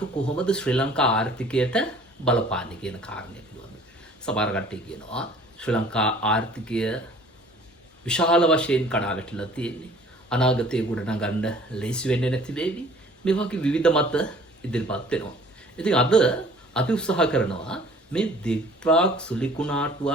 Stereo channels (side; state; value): both; normal; correlation 0.52